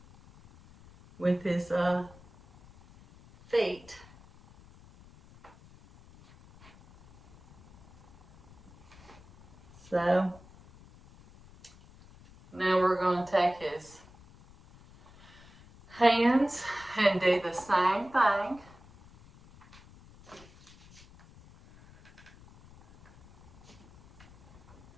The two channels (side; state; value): left; noise; rumble, 24 dB below the sound